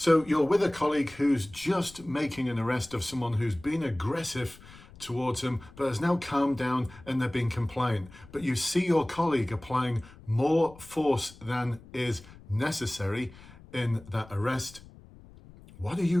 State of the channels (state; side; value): noise; left; rumble, 21 dB below the sound